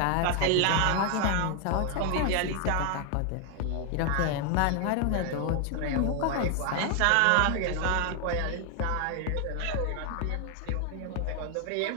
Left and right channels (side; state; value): both; different; correlation 0.00